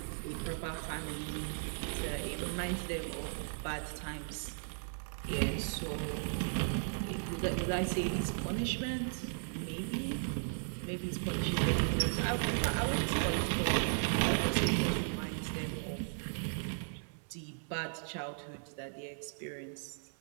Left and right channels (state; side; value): silent; left; 54 dB below the other